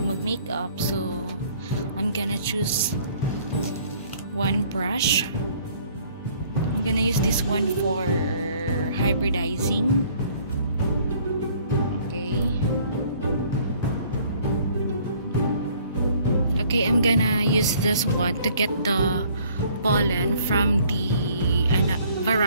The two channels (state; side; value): inverted; both; correlation -0.58